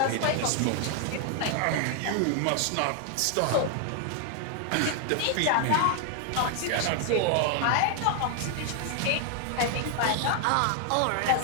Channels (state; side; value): different; both; correlation 0.00